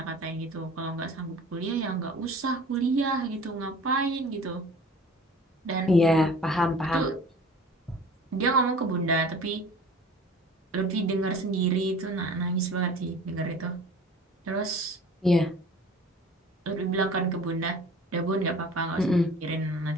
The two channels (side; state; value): both; normal; correlation 0.44